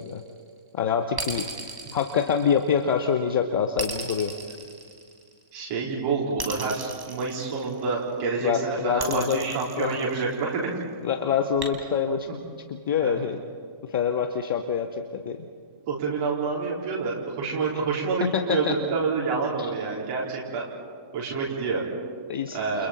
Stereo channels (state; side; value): late; left; 1.1 ms